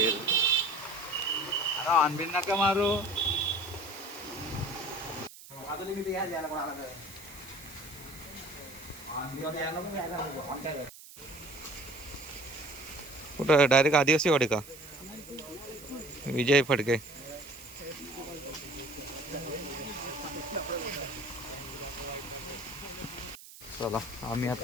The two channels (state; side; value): noise; right; hiss, 17 dB below the sound